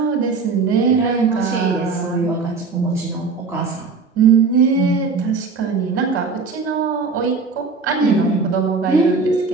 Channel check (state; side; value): quieter; left; 4.6 dB